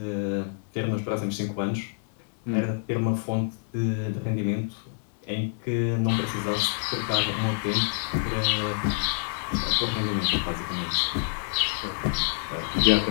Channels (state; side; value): silent; right; digital silence